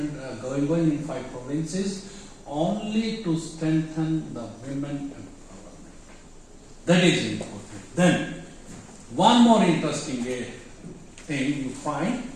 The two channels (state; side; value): identical; both; correlation 1.00